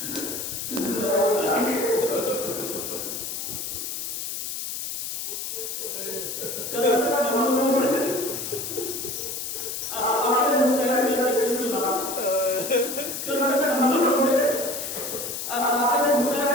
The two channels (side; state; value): left; noise; hiss, 5 dB below the sound